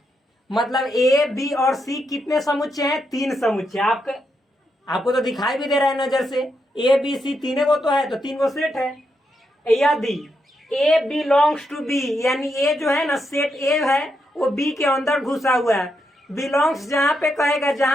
मतलब ए बी और सी कितने समुच्चय हैं, तीन समुच्चय। आपको तो दिखाई भी दे रहा है नजर से, ए बी सी तीनों को तो है, तो तीन को सेट है। यदि ए बिलोंग्स टू बी, यानी ए जो है ना सेट ए है वो बी के अंदर घुसा हुआ है। बिलोंग्स जहां पे कहेगा,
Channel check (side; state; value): both; normal; correlation 0.82